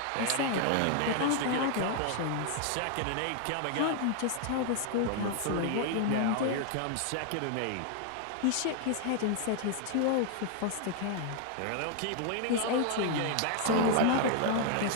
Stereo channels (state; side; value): different; both; correlation 0.00